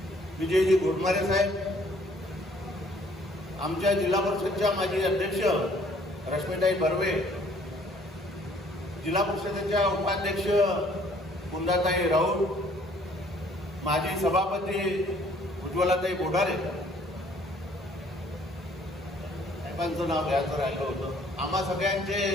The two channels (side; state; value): both; normal; correlation 0.60